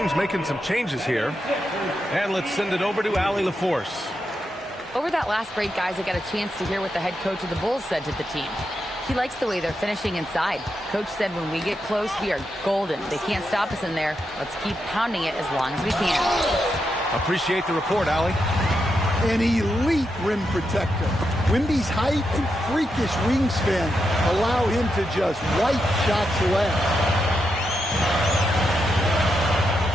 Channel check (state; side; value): normal; both; correlation 0.85